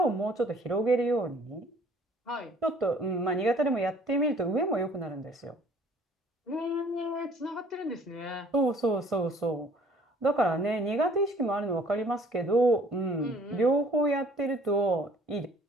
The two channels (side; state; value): both; normal; correlation 0.56